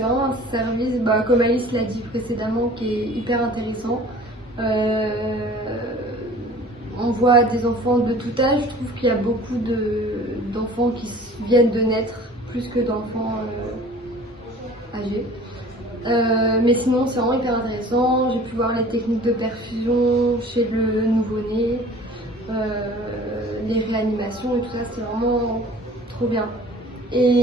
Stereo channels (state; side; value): normal; both; correlation 0.46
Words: vraiment un service, comme Alice l'a dit précédemment, qui est hyper intéressant. On voit des enfants de tout âge. Je trouve qu'il y a beaucoup d'enfants qui viennent de naître plus que d'enfants âgés. Mais sinon, c'est vraiment hyper intéressant. J'ai pu voir les techniques de perfusion chez le nouveau-né, les réanimations et tout ça, c'est vraiment trop bien.